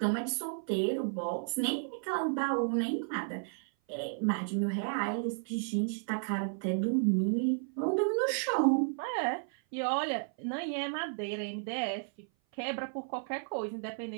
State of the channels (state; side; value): silent; left; 56 dB below the other